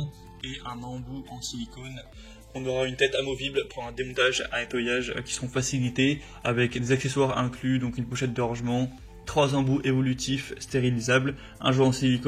et un embout en silicone. On aura une tête amovible pour un démontage, un nettoyage qui seront facilités, avec des accessoires inclus, donc une pochette de rangement, 3 embouts évolutifs stérilisables, un jouet en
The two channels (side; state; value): both; identical; correlation 1.00